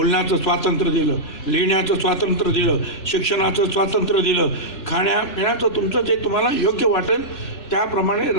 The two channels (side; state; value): right; late; 3.0 ms